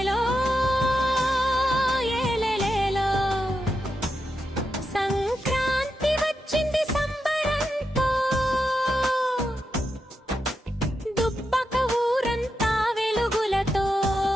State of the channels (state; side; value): normal; both; correlation 0.86